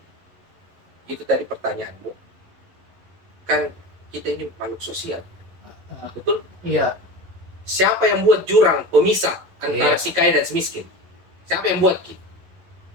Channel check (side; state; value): left; late; 11 ms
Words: Itu tadi pertanyaanmu. Kan kita ini makhluk sosial. Betul? iya. Siapa yang buat jurang pemisah antara Iya. si kaya dan si miskin? Siapa yang buat, Ki?